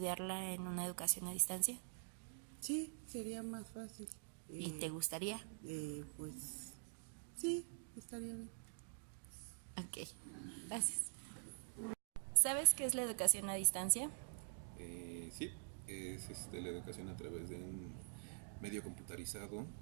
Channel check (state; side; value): silent; left; digital silence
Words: en una educación a distancia? Sí, sería más fácil. ¿Y te gustaría? Pues sí, estaría bien. Ok, gracias. ¿Sabes qué es la educación a distancia? Sí, es la educación a través de un medio computarizado,